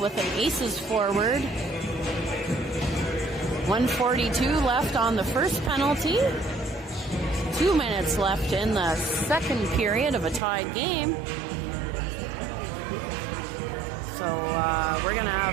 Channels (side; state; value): left; drops out; at 10.4 s